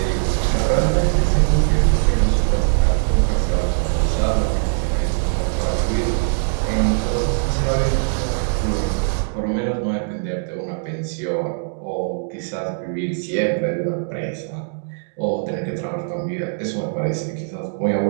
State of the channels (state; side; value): silent; left; digital silence